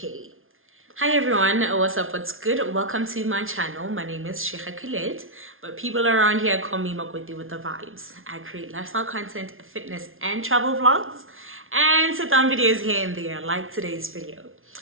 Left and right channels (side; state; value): left; late; 0.60 ms